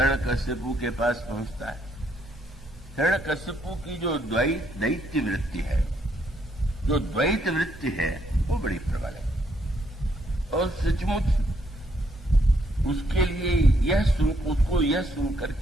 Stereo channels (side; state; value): both; normal; correlation 0.72